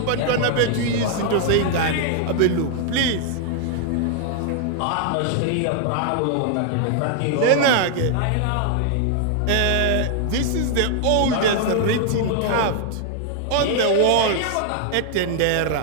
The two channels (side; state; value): both; different; correlation 0.00